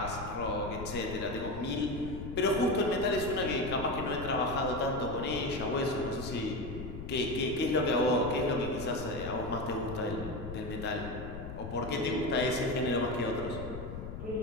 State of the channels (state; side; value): noise; left; rumble, 8 dB below the sound